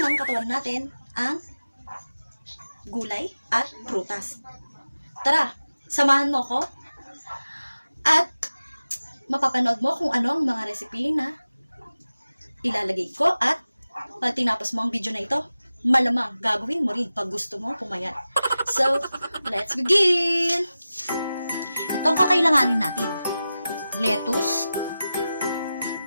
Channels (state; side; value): inverted; both; correlation -0.94